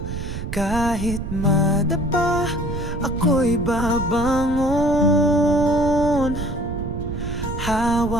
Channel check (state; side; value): noise; right; rumble, 6 dB below the sound